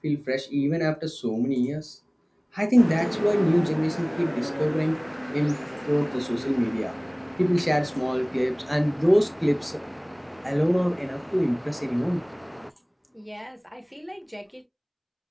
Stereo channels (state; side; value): identical; both; correlation 1.00